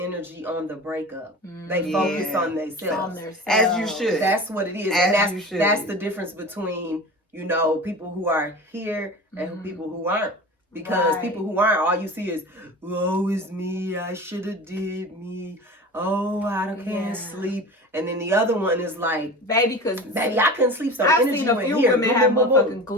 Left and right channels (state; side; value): normal; both; correlation 0.34